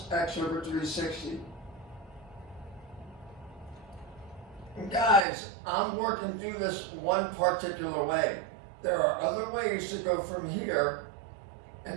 x over 360. And guys, I'm working through this one particular way. There are other ways to go from here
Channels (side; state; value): left; drops out; at 5.2 s